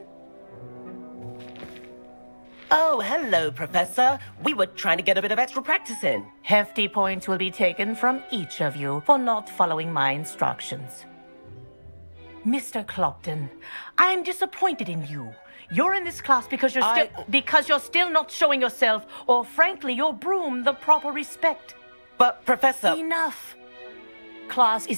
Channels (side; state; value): both; inverted; correlation -1.00